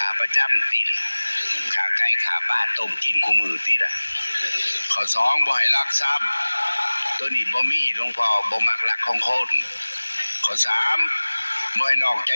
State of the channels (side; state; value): both; inverted; correlation -1.00